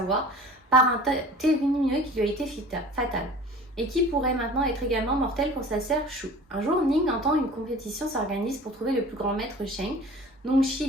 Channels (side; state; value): both; normal; correlation 0.43